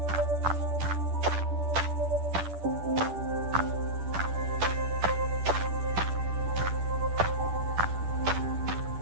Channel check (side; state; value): left; late; 10 ms